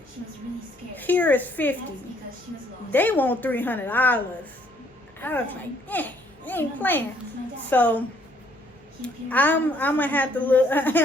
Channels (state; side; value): normal; both; correlation 0.65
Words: Here is $50. They want $300. I was like, they ain't playing. So I'm gonna have to look.